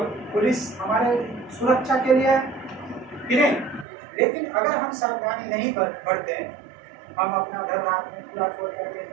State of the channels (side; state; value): left; drops out; at 3.9 s